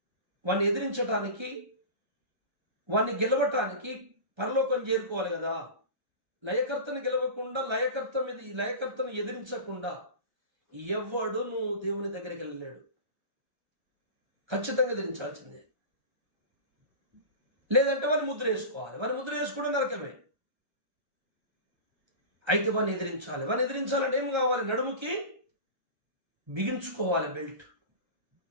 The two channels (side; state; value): left; late; 1.3 ms